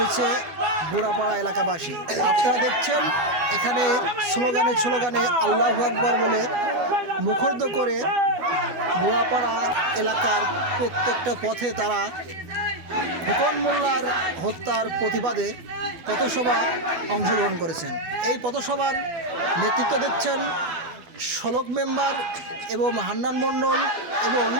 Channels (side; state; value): left; late; 12 ms